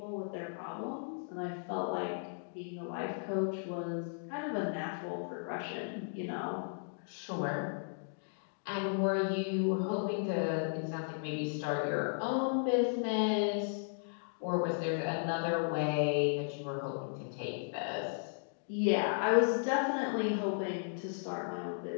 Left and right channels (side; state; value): right; silent; digital silence